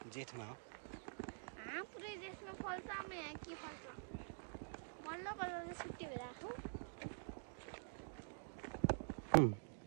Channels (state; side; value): silent; left; digital silence